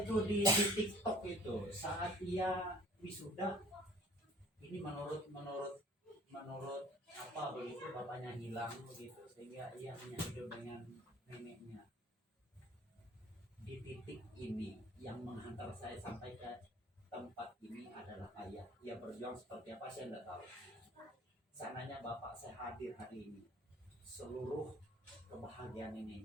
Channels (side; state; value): both; normal; correlation 0.52